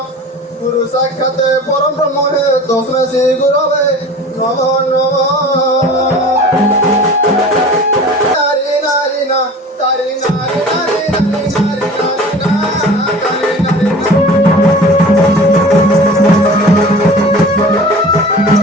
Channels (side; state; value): both; normal; correlation 0.41